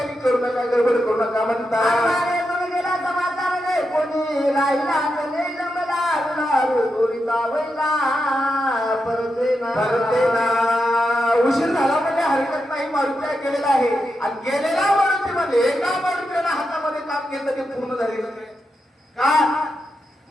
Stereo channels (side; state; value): both; normal; correlation 0.87